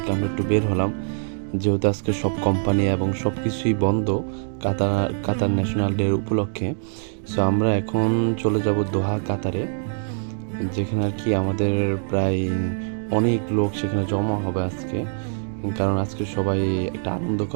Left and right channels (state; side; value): silent; left; digital silence